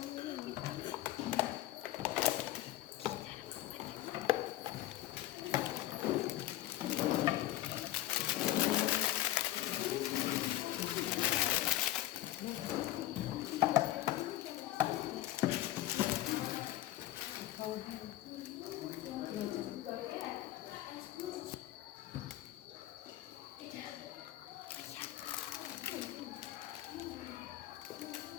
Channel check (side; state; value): right; quieter; 15.1 dB